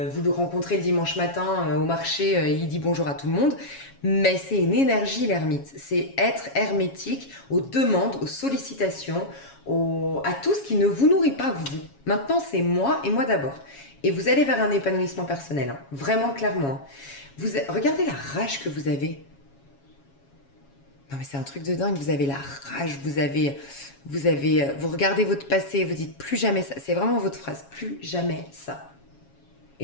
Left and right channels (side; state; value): right; late; 7.2 ms